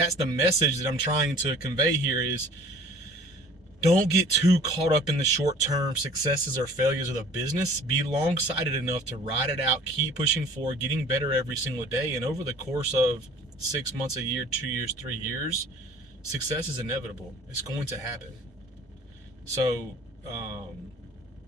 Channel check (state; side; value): normal; both; correlation 0.48